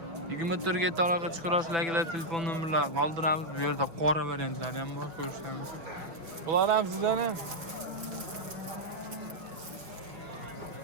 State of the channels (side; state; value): left; late; 5.8 ms